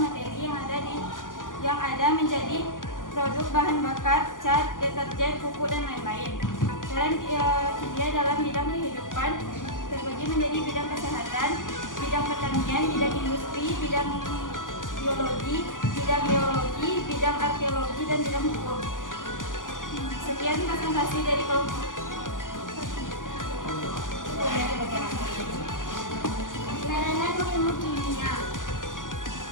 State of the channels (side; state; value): right; late; 0.88 ms